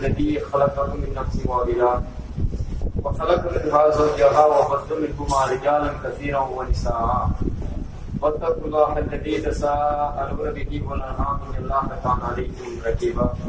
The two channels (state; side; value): identical; both; correlation 1.00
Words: خلقكم من نفس واحدة وخلق منها زوجها وبث منهما رجالا كثيرا ونساء واتقوا الله الذي تساءلون به والأرحام إن الله كان عليكم رقيبا.